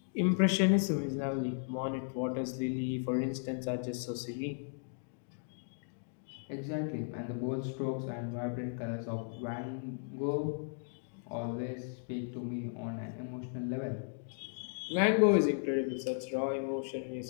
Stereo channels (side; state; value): right; silent; digital silence